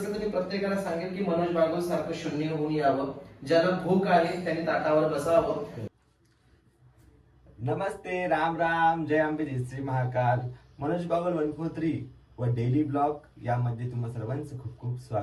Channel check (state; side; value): identical; both; correlation 1.00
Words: तर मी प्रत्येकाला सांगेल की मनोज बागुल सारखं शून्य होऊन यावं. ज्याला भूक आहे त्यांनी ताटावर बसावं. नमस्ते, राम राम, जय अंबे, जय श्री महाकाल. मनोज बागुल 143 व डेली ब्लॉग यामध्ये तुम्हा सर्वांचं खूप खूप